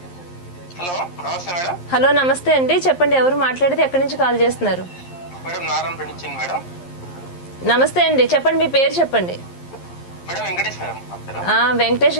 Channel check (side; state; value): right; late; 11 ms